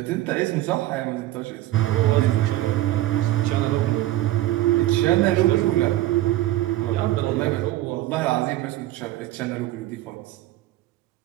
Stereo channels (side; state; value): left; quieter; 15.4 dB